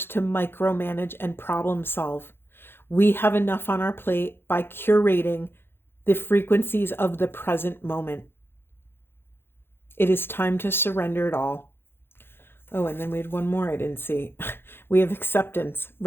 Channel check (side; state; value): right; late; 0.11 ms